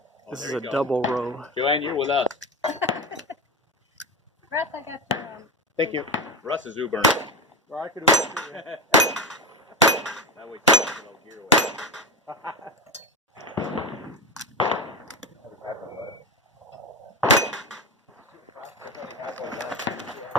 This is a double row. Joanne, you're with us. Russ, I got the Thank you. Russ is Ubering. Well, I could do it. That way you can get a little gear away.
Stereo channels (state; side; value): normal; both; correlation 0.21